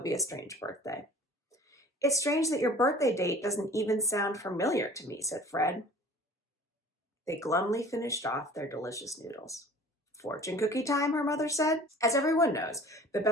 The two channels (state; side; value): normal; both; correlation 0.45